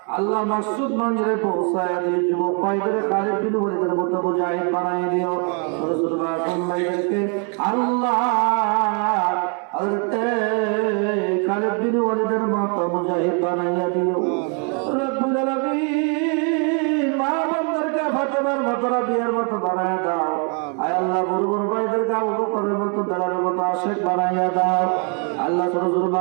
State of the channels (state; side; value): quieter; left; 38.4 dB